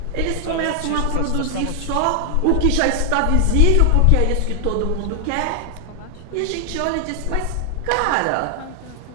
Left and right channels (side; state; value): both; different; correlation 0.00